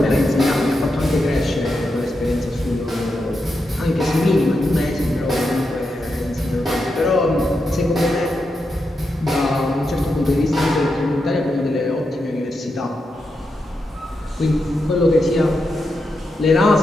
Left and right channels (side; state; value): both; normal; correlation 0.86